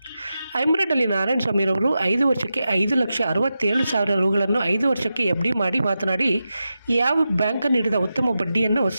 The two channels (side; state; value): both; inverted; correlation -0.90